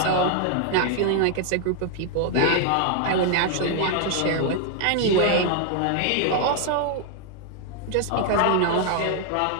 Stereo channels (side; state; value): both; different; correlation 0.00